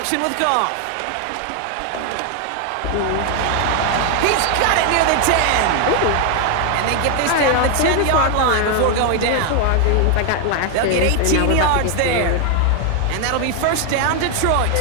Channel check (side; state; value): both; different; correlation 0.01